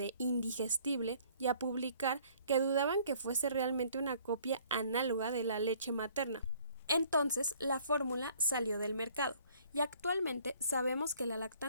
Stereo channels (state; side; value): inverted; both; correlation -0.58